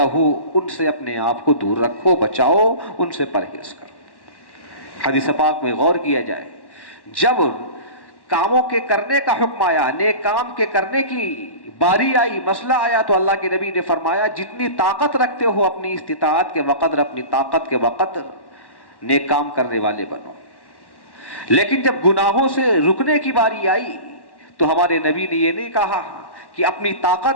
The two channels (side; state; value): right; late; 1.1 ms